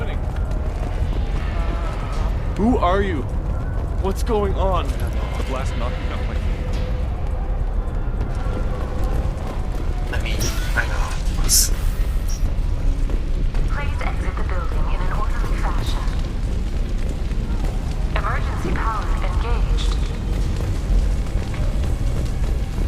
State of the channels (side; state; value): both; identical; correlation 1.00